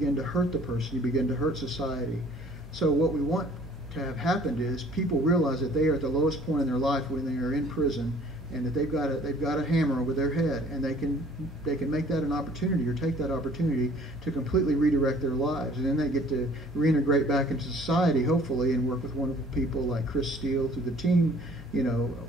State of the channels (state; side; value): normal; both; correlation 0.54